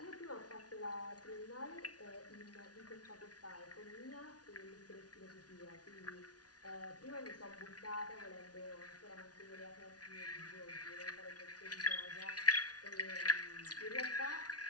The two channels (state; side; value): late; right; 0.69 ms